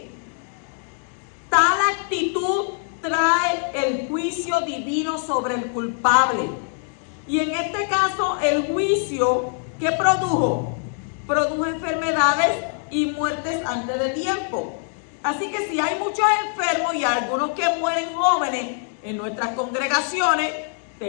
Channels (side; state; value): right; silent; 55 dB below the other